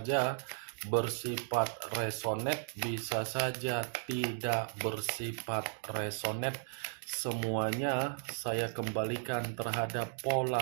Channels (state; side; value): silent; left; digital silence